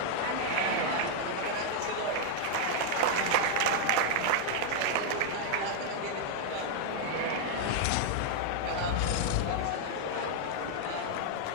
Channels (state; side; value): different; both; correlation 0.00